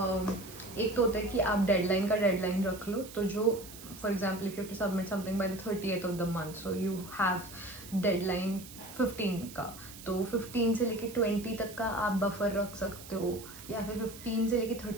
एक तो होता है कि आप डेडलाइन का डेडलाइन रख लो. तो जो for example if you have to submit something by the 30th of the month, so you have deadline 15 का, तो 15 से लेके 20 तक का आप बफर रख सकते हो, या फिर 15 से लेके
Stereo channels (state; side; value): noise; right; hiss, 16 dB below the sound